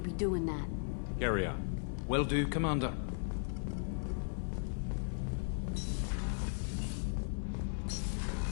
be doing that. Carry on. Will do, Commander.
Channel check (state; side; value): silent; right; 53 dB below the other